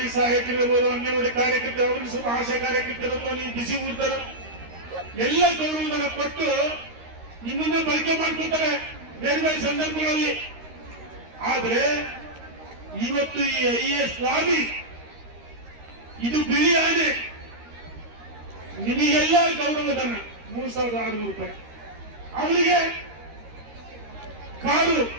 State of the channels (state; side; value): late; left; 13 ms